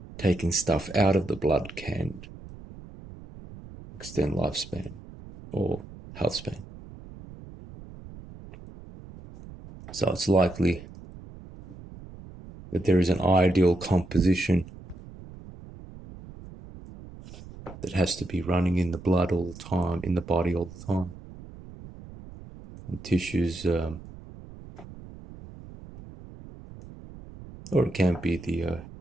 taking stuff out of the blood can extend lifespan or health span. So it's likely that there is an ideal composition that has to be running in the blood all the time, in the body all the time. And tissues, or it can be the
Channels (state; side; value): noise; right; rumble, 16 dB below the sound